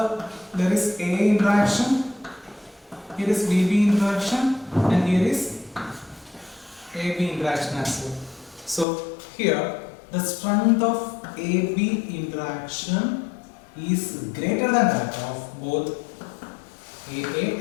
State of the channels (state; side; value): drops out; right; at 8.8 s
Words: there is A interaction, here is BB interaction, and here is AB interaction as well. So here the strength of AB interaction is greater than that of both AA